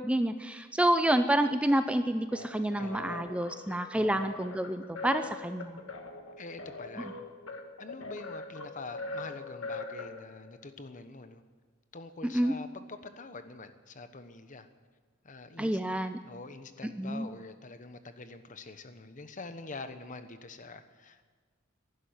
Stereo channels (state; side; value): normal; both; correlation 0.80